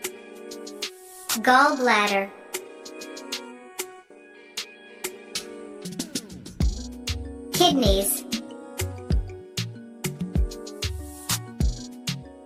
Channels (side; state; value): both; identical; correlation 1.00